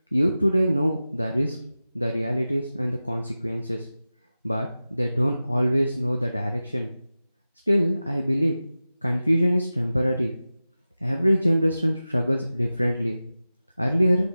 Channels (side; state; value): both; inverted; correlation -0.95